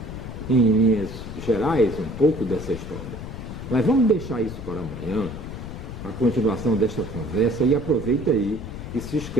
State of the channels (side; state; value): left; noise; rumble, 9 dB below the sound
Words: em linhas gerais, um pouco dessa história. Mas vamos deixar isso para amanhã, a continuação desta conversa, e aproveita aí e se